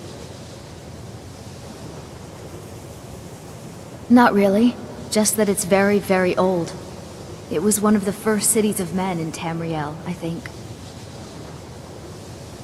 Not really. Just that it's very, very old. It was one of the first cities of men in Tamriel, I think.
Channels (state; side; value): identical; both; correlation 1.00